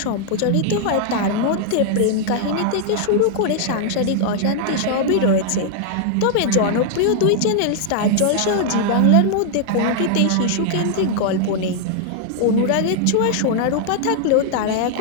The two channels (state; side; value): different; both; correlation -0.01